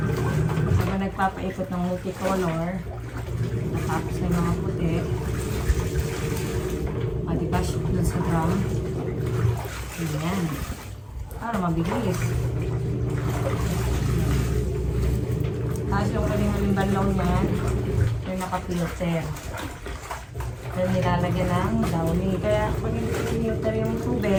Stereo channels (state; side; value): identical; both; correlation 1.00